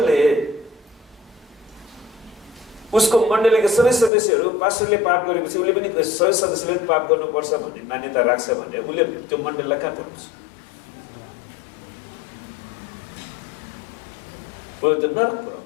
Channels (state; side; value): drops out; right; at 4.1 s